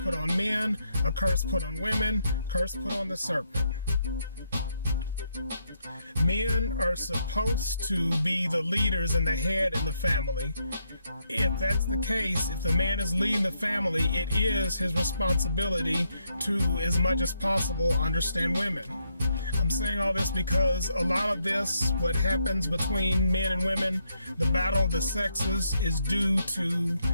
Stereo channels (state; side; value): inverted; both; correlation -0.77